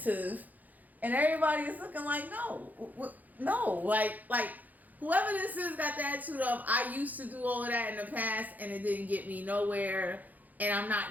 and everybody is looking like, no, like whoever this is got the attitude of, I used to do all of that in the past and it didn't get me nowhere, and I'm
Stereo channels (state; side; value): late; left; 0.082 ms